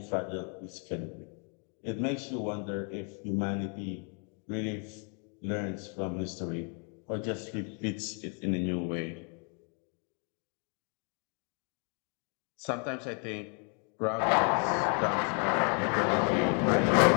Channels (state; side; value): quieter; right; 39.7 dB